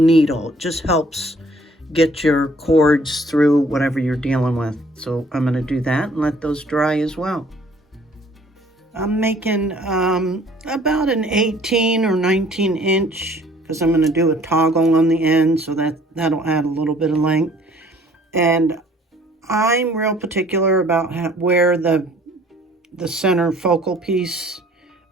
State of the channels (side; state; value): both; normal; correlation 0.57